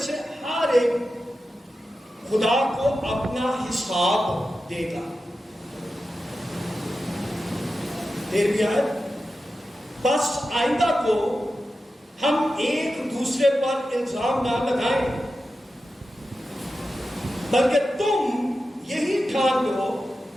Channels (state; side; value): normal; both; correlation 0.92